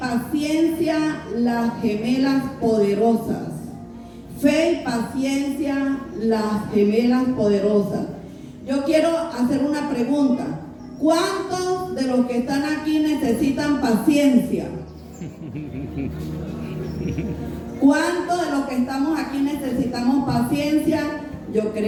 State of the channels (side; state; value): both; identical; correlation 1.00